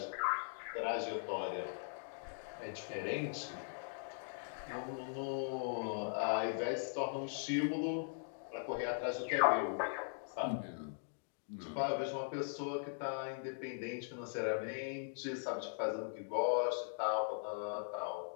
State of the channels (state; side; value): silent; right; digital silence